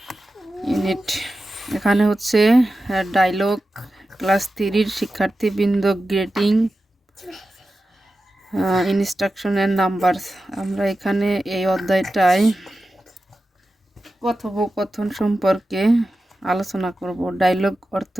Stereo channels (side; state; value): both; normal; correlation 0.92